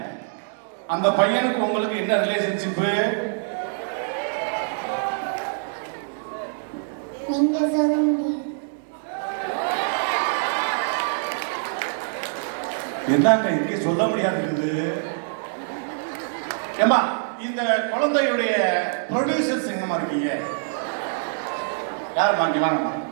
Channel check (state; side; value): silent; left; digital silence